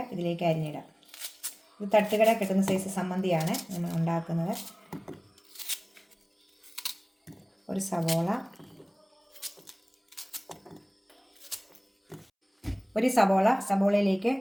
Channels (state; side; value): identical; both; correlation 1.00